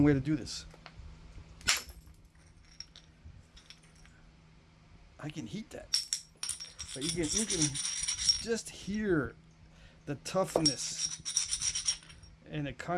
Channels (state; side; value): identical; both; correlation 1.00